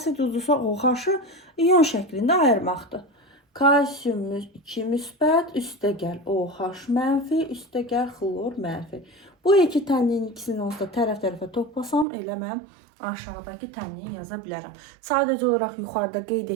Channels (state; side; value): drops out; left; at 12.1 s